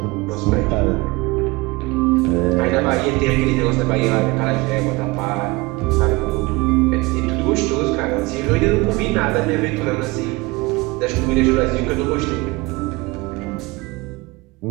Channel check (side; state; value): left; quieter; 23.3 dB